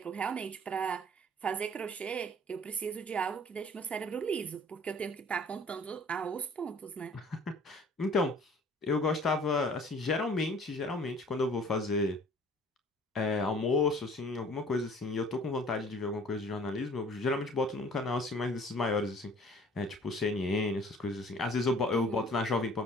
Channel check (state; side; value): normal; both; correlation 0.51